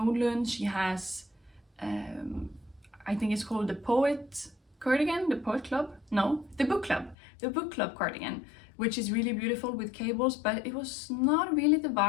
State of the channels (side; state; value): right; drops out; at 7.2 s